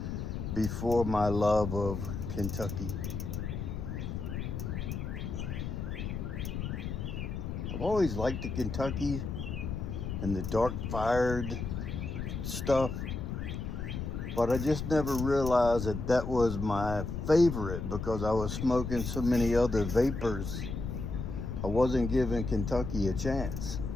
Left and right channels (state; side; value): noise; left; rumble, 4 dB below the sound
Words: before my love of Kentucky. I've always liked the Kentucky and the dark fired stuff. But I just never realized that that was my favorite because I was smoking so many other Vapors. I wasn't giving Kentucky a chance.